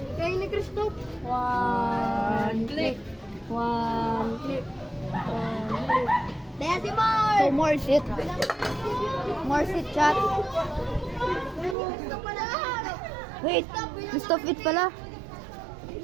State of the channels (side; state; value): left; drops out; at 11.8 s